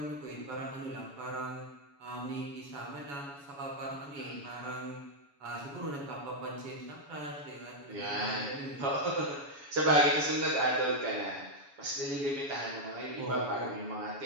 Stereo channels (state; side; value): late; left; 7.1 ms